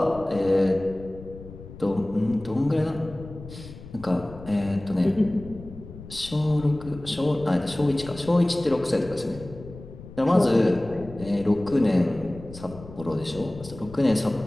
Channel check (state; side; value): noise; left; rumble, 16 dB below the sound